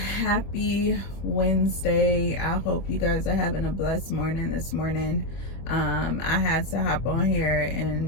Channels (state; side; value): late; right; 25 ms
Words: Wednesday. I hope you guys are having a blessed morning this morning. I had to hop on here